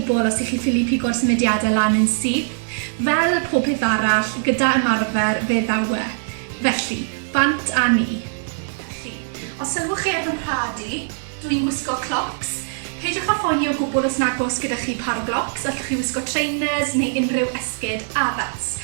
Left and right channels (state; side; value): silent; left; 65 dB below the other